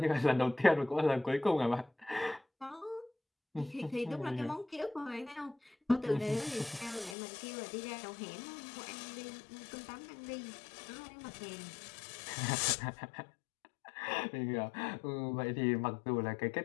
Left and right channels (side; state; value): right; drops out; at 7.2 s